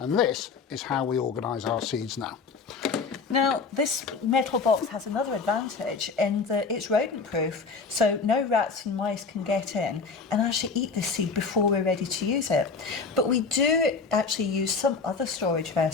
this is how we organise our seeds now. Now, this metal box has another advantage in that it's rodent proof, so no rats and mice can get in and actually eat this seed before we're ready to use it. But we do actually use some other storage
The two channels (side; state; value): right; quieter; 4.7 dB